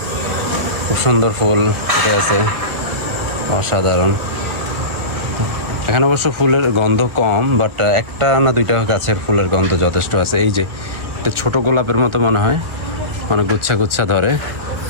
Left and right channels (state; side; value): late; left; 1.9 ms